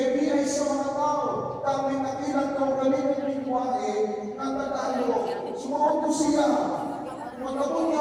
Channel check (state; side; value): identical; both; correlation 1.00